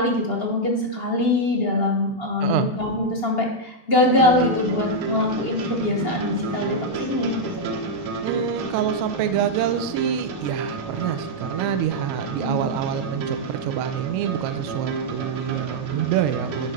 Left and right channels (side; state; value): right; late; 2.8 ms